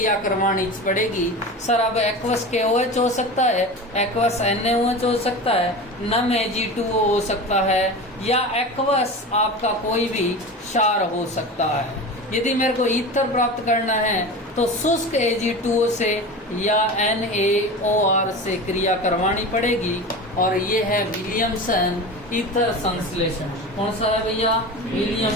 करवानी पड़ेगी। सर अब एक्वस KOH हो सकता है, एक्वस NaOH हो सकता है, नम Ag2O हो सकता है, या एक्वस आपका कोई भी क्षार हो सकता है। यदि मेरे को ईथर प्राप्त करना है तो शुष्क Ag2O से या NaOR से क्रिया करवानी पड़ेगी। और ये है विलियमसन ईथर संश्लेषण। कौन सा है भैया?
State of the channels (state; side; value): normal; both; correlation 0.30